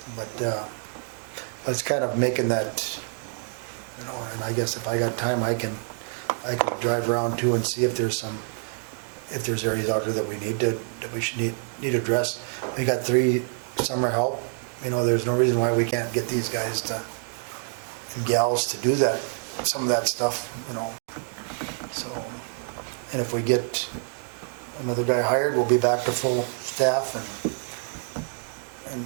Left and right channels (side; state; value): left; silent; 60 dB below the other